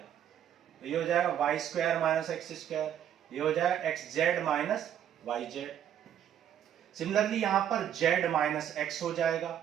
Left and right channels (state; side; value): quieter; left; 10.0 dB